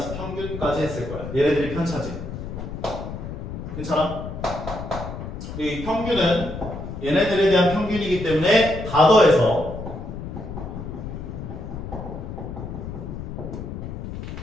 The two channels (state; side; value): noise; left; rumble, 8 dB below the sound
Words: 평균까지 했을 거야. 얘네들이 편차지. 괜찮아? 이 평균은 얘네들에 대한 평균이기 때문에 다 더해서